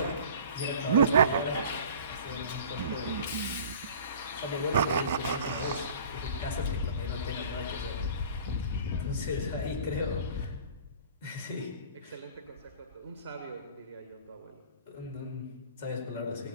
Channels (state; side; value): inverted; both; correlation -0.45